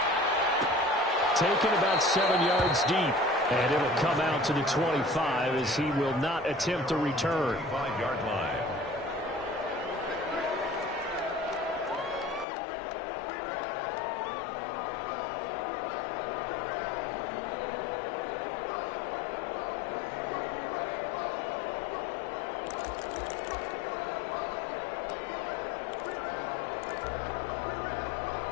Taken about 7 yards deep. And it'll come out to the 25 as he will not attempt a return. 5-yard line.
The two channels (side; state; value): right; drops out; at 12.5 s